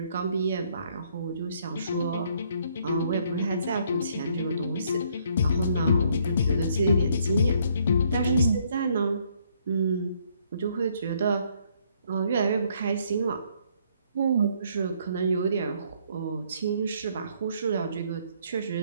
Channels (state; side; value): inverted; both; correlation -0.67